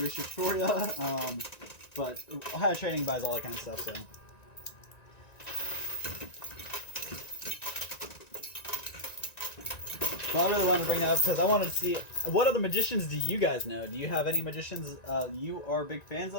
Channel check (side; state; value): right; late; 1.9 ms